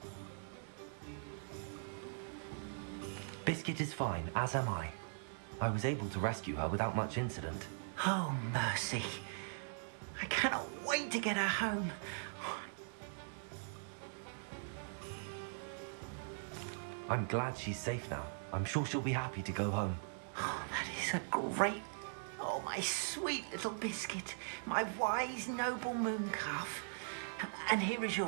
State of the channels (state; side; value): silent; left; digital silence